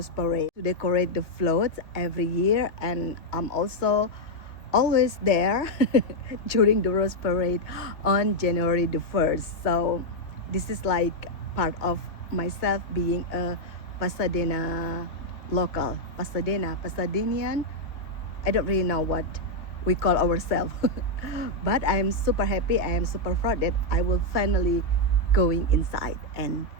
Parade to decorate the floats every year, and I'm also always there during the Rose Parade on January the 1st. So this is like part of myself being a Pasadena local, Pasadenian. I don't really know what we call ourselves, but I am super happy. I am super proud that I will finally going inside and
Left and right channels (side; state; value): right; late; 2.2 ms